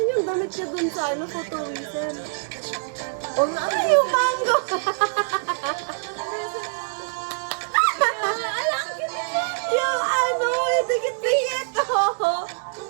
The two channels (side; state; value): left; silent; digital silence